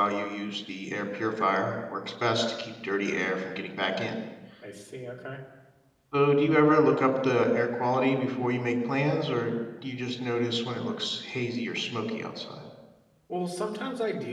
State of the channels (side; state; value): both; identical; correlation 1.00